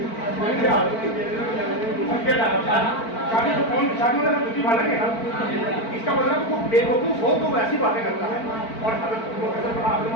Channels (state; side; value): late; right; 4.5 ms